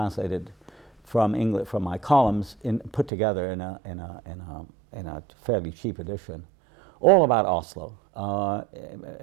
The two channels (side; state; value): left; drops out; at 3.1 s